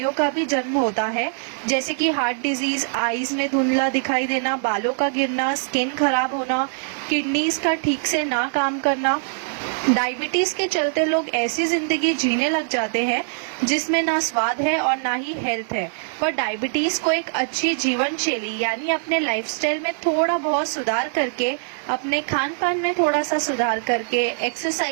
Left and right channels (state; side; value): silent; left; digital silence